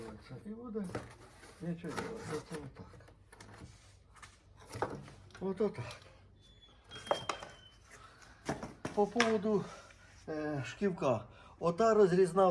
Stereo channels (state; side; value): identical; both; correlation 1.00